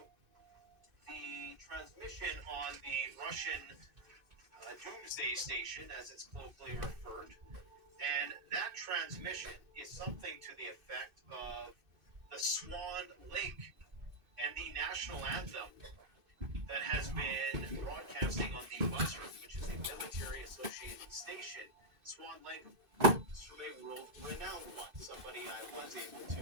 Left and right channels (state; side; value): late; left; 2.6 ms